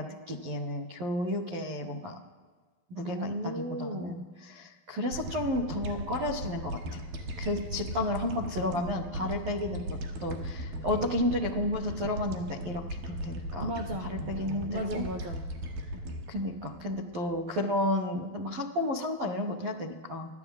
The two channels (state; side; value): late; left; 11 ms